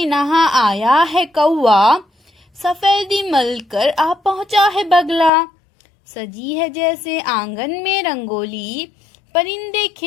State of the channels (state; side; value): drops out; right; at 5.3 s